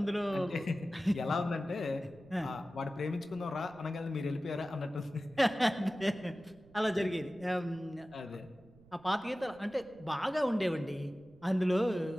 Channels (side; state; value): right; noise; rumble, 25 dB below the sound